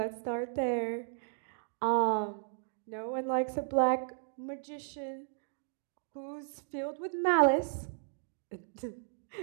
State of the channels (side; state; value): left; silent; digital silence